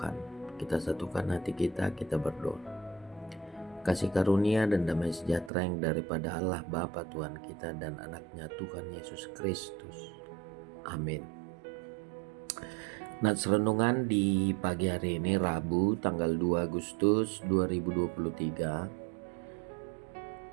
Kita satukan hati kita berdoa. Kasih karunia dan damai sejahtera yang daripada Allah Bapa Tuhan kita dan anaknya Tuhan Yesus Kristus. Amin. Nats renungan di pagi hari ini Rabu tanggal 2 Agustus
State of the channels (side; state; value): left; drops out; at 5.5 s